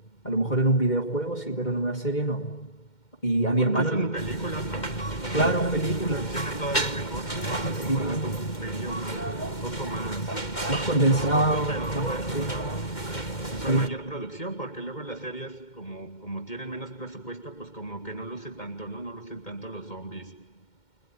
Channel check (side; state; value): right; late; 2.1 ms